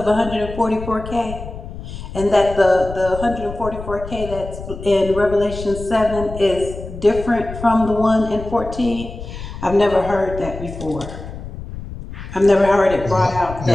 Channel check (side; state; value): left; noise; rumble, 11 dB below the sound